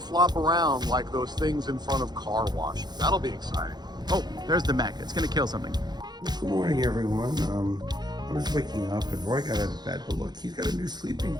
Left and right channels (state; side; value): late; left; 0.20 ms